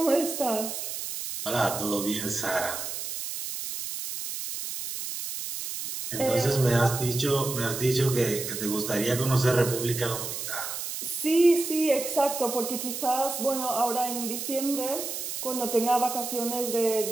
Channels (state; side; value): noise; right; hiss, 6 dB below the sound